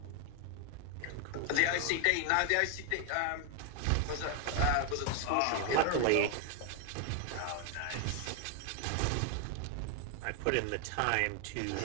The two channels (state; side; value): different; both; correlation 0.00